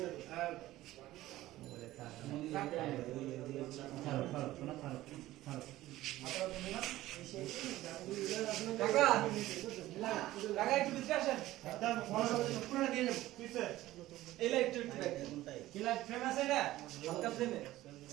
কাকা কাকা একটু ভিতরে আসেন পুরোটা দিয়ে যাবো এই লাইট কি লাইট ফেমাস এটা হালকা ফ্লেমে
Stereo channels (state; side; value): quieter; left; 15.9 dB